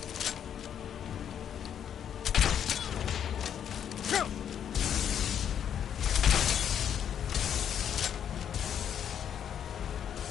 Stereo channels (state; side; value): quieter; right; 9.0 dB